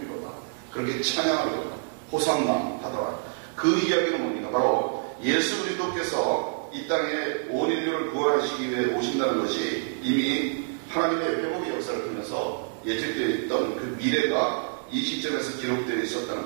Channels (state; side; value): silent; left; digital silence